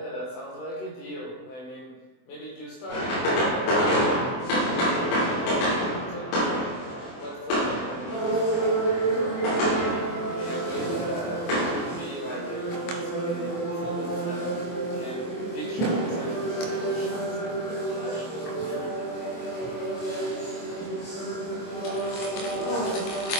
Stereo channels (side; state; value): right; late; 24 ms